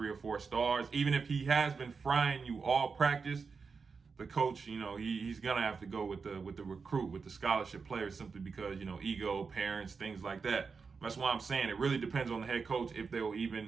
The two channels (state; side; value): quieter; left; 5.1 dB